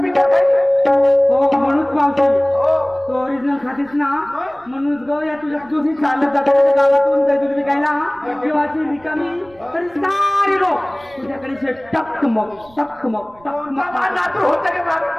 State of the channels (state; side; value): noise; right; rumble, 27 dB below the sound